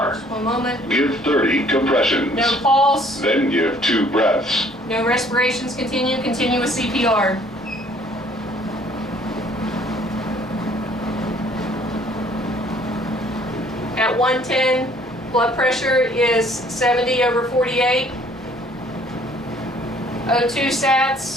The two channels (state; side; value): normal; both; correlation 0.58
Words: One moment. Give 30 compressions. No pulse. Then give 2 breaths. No respirations. Continue with CPR. At 110, blood pressure is 70 over 48. O2